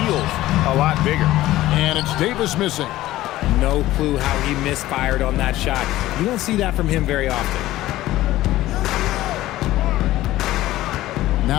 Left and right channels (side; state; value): right; quieter; 15.7 dB